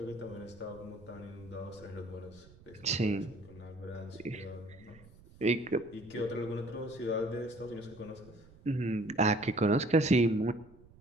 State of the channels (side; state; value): right; noise; rumble, 23 dB below the sound